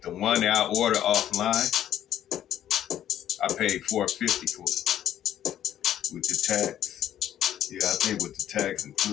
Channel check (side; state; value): right; quieter; 11.2 dB